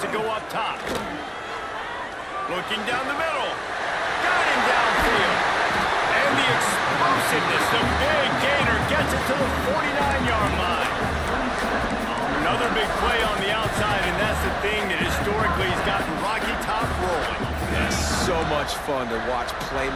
to go up top. Looking down the middle. Got him downfield. And the explosiveness, the big gainer gets it to the 49-yard line. Another big play on the outside, and that's the thing that historically has gotten Rocky Top rolling. Yes. so much fun to watch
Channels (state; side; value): identical; both; correlation 1.00